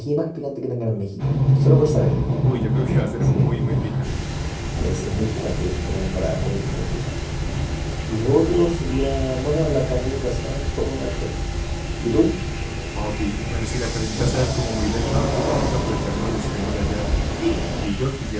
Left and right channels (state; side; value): identical; both; correlation 1.00